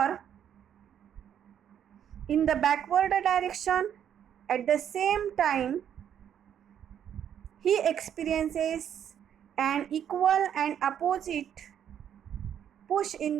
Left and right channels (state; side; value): quieter; left; 9.3 dB